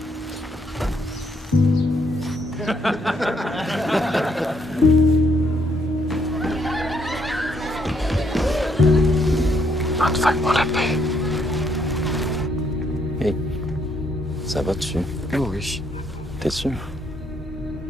Fais-moi la paix. Hey, ça va dessus? Oh oui. T'es sûr?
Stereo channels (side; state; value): both; normal; correlation 0.72